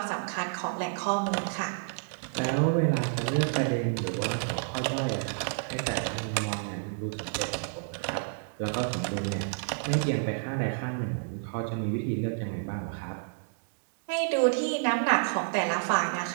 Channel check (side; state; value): left; silent; digital silence